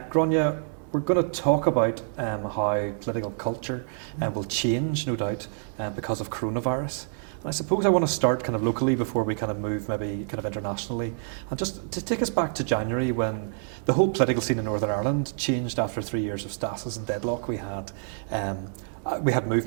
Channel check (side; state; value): left; silent; digital silence